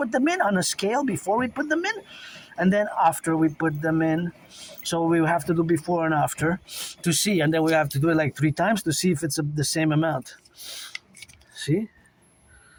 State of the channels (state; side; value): identical; both; correlation 1.00